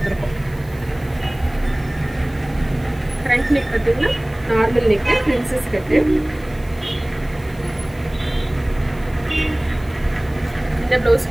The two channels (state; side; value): noise; right; hiss, 26 dB below the sound